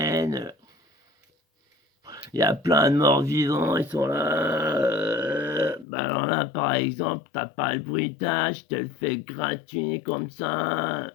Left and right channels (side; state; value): right; drops out; at 5.9 s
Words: il y a plein de morts vivants, ils sont là. Bah alors là, par exemple, t'as pas le bruitage, je te le fais gratuit comme ça.